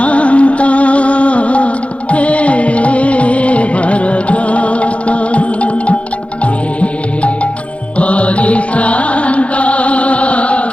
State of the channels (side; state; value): right; late; 0.062 ms